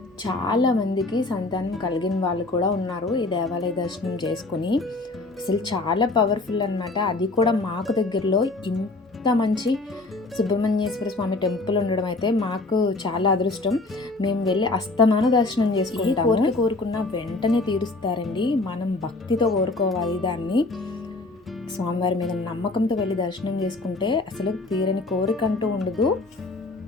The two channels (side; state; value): right; quieter; 3.2 dB